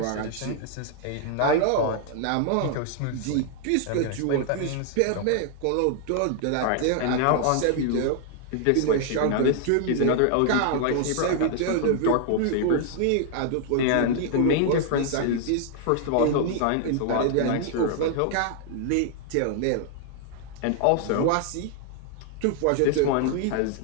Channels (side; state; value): both; different; correlation 0.00